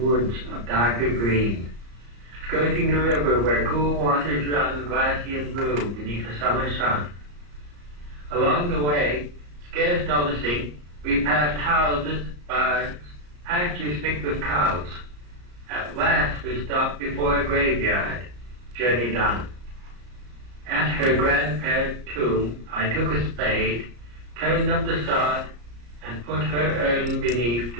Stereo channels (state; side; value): late; left; 34 ms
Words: of darker green, skirting the river where cool waters run glassy and blue beneath a summer sun. Along the way, scarce noticing, we passed houses, barns, pastures thick with cows. At last we stopped before a graveyard, journey done. At her grandparents' tomb, I took a spade, turned up the sod, and put her urn beneath